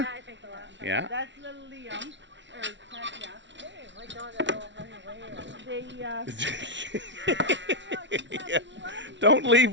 Yeah, I think the last time. Yeah. That's little Liam. Or Katya. Hey, my dog is all running away. They Don't leave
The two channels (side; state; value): left; late; 0.53 ms